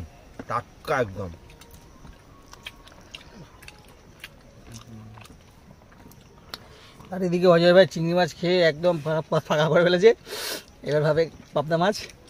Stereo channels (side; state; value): both; identical; correlation 1.00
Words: টাটকা একদম। আর এদিকে অজয় ভাই চিংড়ি মাছ খেয়ে একদম ফাঁকা করে ফেলেছে। এবার ভাবে পাবদা মাছ